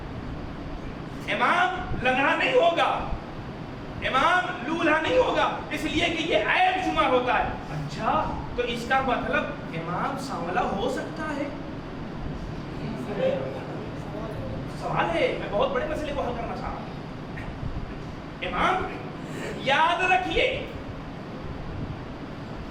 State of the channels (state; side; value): identical; both; correlation 1.00